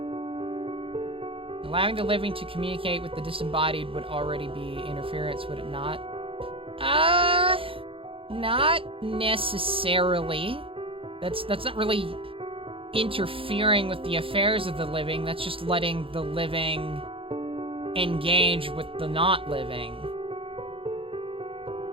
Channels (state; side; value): late; left; 0.26 ms